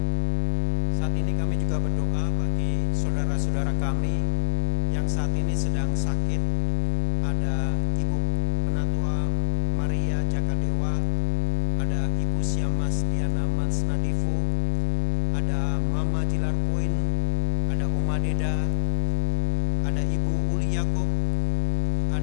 Saat ini kami juga berdoa bagi saudara-saudara kami yang saat ini sedang sakit. Ada Ibu Penatua Maria Jakadewa, ada Ibu Siamas Diana Mansnadifu, ada Mama Jilar Poin, ada Oma Deda, ada Ibu Uli Yakob,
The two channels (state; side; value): silent; right; digital silence